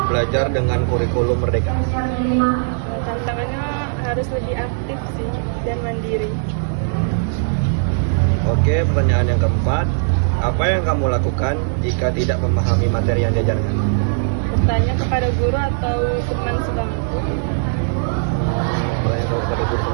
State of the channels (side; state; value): left; silent; 63 dB below the other